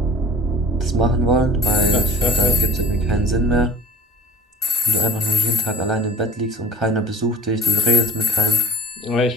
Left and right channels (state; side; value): normal; both; correlation 0.41